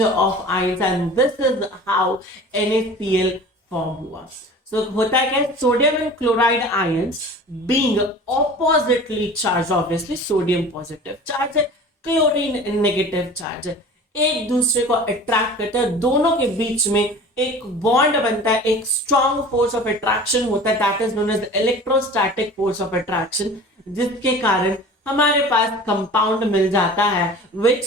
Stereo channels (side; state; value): both; normal; correlation 0.40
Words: of ions, and this is how NaCl form हुआ। सो होता है क्या, sodium and chloride ions being oppositely charge, obviously sodium positive charge है, क्लोरीन नेगेटिव चार्ज है, एक दूसरे को अट्रैक्ट करते हैं, दोनों के बीच में एक बॉन्ड बनता है, एक स्ट्रॉन्ग फोर्स ऑफ अट्रैक्शन होता है, that is known as electrostatic force of attraction, जिसके कारण हमारे पास कंपाउंड मिल जाता है